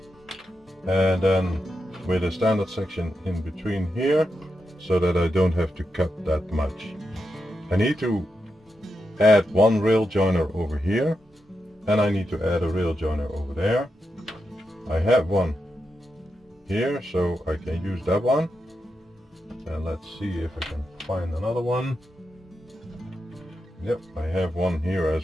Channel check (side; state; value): both; normal; correlation 0.87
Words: and then with a standard section in between here, so that I don't have to cut that much. I need to add one rail joiner over here, and I need to add a rail joiner over there. I have one here, so I can use that one. And let's see if I can find another one. Yep, I have one here